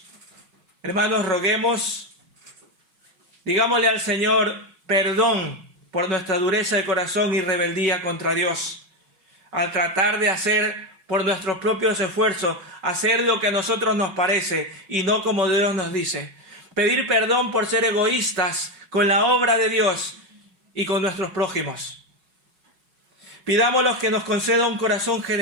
Hermanos, roguemos, digámosle al Señor perdón por nuestra dureza de corazón y rebeldía contra Dios, al tratar de hacer por nuestros propios esfuerzos, hacer lo que a nosotros nos parece y no como Dios nos dice. Pedir perdón por ser egoístas con la obra de Dios y con nuestros prójimos. Pidámosle que nos conceda un corazón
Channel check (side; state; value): left; late; 5.4 ms